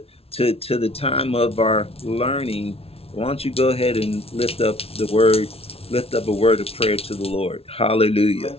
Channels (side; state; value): right; late; 0.29 ms